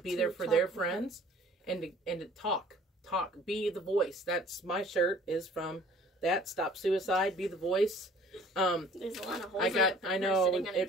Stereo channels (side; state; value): both; normal; correlation 0.52